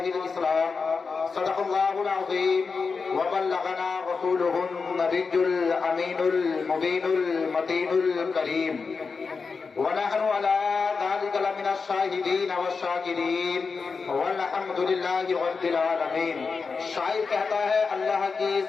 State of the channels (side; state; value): right; quieter; 4.9 dB